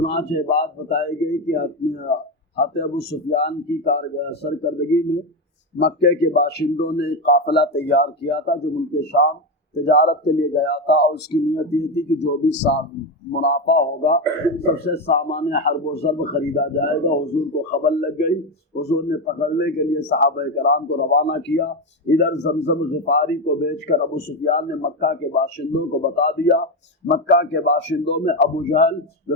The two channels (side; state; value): both; normal; correlation 0.13